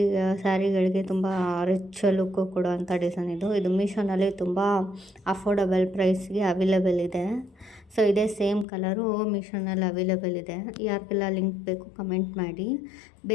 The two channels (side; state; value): right; drops out; at 8.7 s